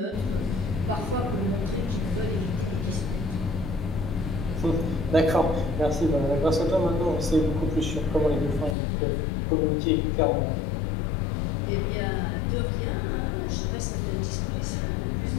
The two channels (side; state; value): right; drops out; at 8.8 s